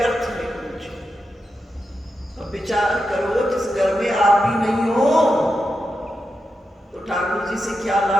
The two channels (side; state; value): both; normal; correlation 0.88